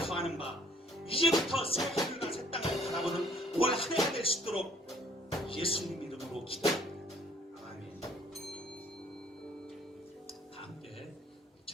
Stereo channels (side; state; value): both; normal; correlation 0.60